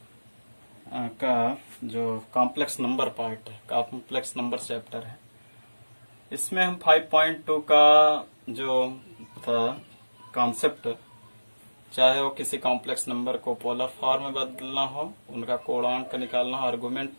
का जो कॉम्प्लेक्स नंबर पार्ट है, कॉम्प्लेक्स नंबर चैप्टर है, इसमें हम 5.2 का जो था कॉन्सेप्ट, चाहे वो किसी कॉम्प्लेक्स नंबर को पोलर फॉर्म में बदलना हो, उनका कोणांक निकालना हो, आर्गुमेंट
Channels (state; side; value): inverted; both; correlation -1.00